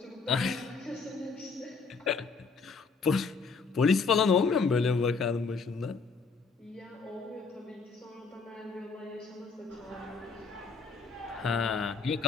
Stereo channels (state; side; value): quieter; right; 4.7 dB